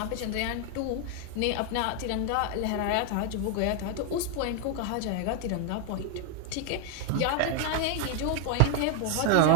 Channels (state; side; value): different; both; correlation 0.01